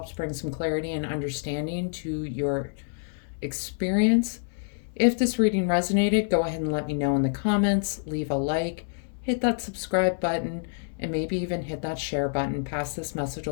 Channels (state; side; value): silent; right; 60 dB below the other